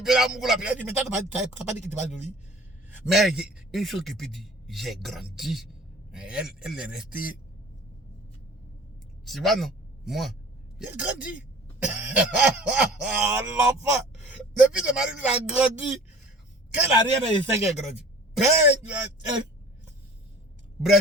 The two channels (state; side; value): normal; both; correlation 0.45